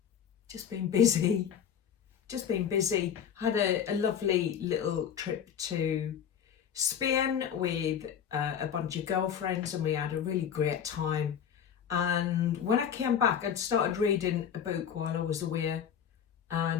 just been busy. Had a lovely little trip to Spain with a bunch of girlfriends, and we had a really great time. And when I came back, I'd started reading a book while I was away,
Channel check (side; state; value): right; quieter; 8.4 dB